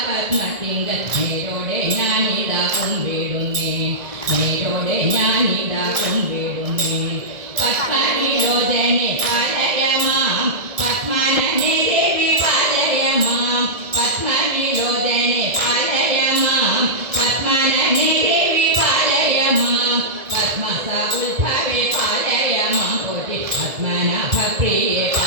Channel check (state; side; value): late; left; 1.7 ms